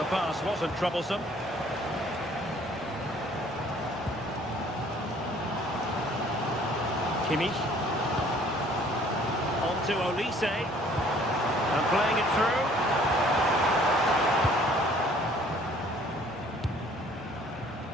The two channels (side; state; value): both; normal; correlation 0.57